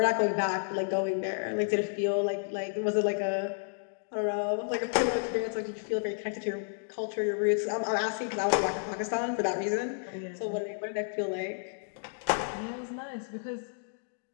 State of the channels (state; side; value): silent; right; digital silence